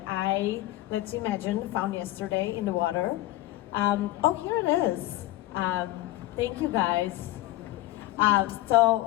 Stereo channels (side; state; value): right; quieter; 16.4 dB